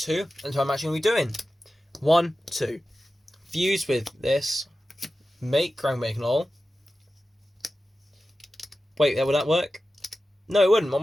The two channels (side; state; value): both; normal; correlation 0.93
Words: and so I'm actually going to be doing 1, 2. Fuse with this, make Grand Wignall. Wait, would that work? No, it wouldn't. What